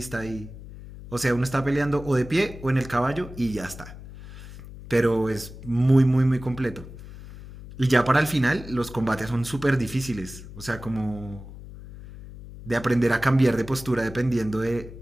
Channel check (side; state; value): left; noise; hum, 15 dB below the sound